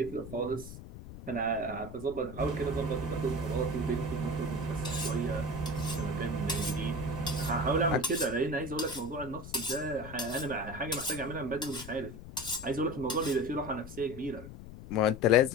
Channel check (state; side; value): noise; left; rumble, 13 dB below the sound